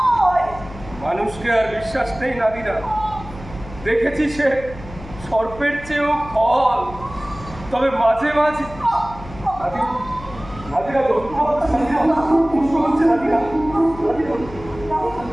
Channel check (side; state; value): left; noise; hum, 15 dB below the sound